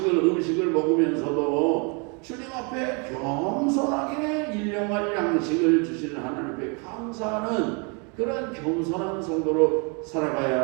먹으면서도 주님 앞에 겸손하게 일용할 양식을 주시는 하나님 앞에 감사하는 그런 겸손한 성도로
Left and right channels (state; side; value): quieter; left; 34.0 dB